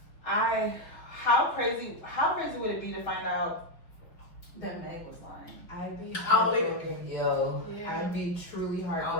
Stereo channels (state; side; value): late; right; 5.5 ms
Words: how crazy would it be to find out that Meg was lying? I'd be I'll believe it. heartbroken. Yo, I'd be truly